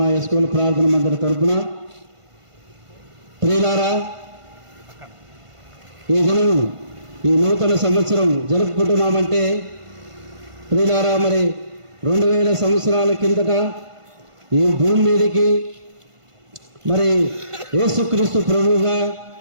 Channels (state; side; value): late; left; 1.5 ms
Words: ఎస్కోల ప్రార్థన మందిర తరపున. ప్రియులారా, ఈ దినం ఈ నూతన సంవత్సరం జరుపుకుంటున్నామంటే ప్రియులారా, మరి 2000 సంవత్సరాల కిందట ఈ భూమి మీదకి మరి యేసుక్రీస్తు ప్రభువుగా